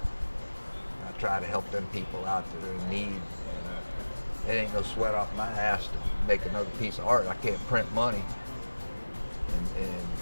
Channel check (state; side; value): inverted; both; correlation -1.00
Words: I try to help them people out that are in need. And, it ain't no sweat off my ass to make another piece of art. I can't print money. And